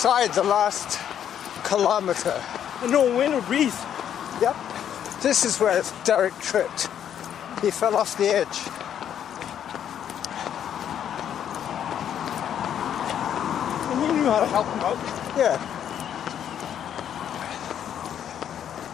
the last kilometre. And no wind or breeze. Yep. This is where Derek tripped. He fell off the edge. And you knew how to help him out. Yeah.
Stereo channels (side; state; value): right; quieter; 9.5 dB